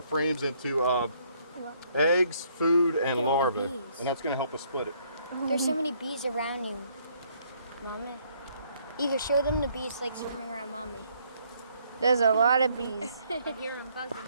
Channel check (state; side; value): inverted; both; correlation -0.67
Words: frames into eggs, food, and Look at all the larvae, bees. and that's gonna help us split it. There's so many bees around you, Mommy. Either show them the bees like swimming around Mommy. There's a lot of bees. I hear them buzzing.